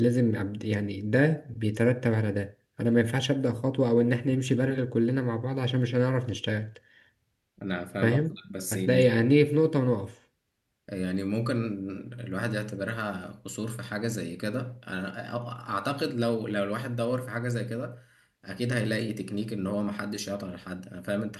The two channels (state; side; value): identical; both; correlation 1.00